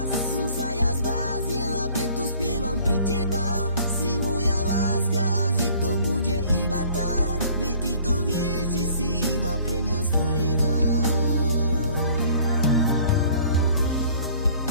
som sa ja zbláznila, preto spievam pre teba.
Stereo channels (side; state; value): both; inverted; correlation -0.54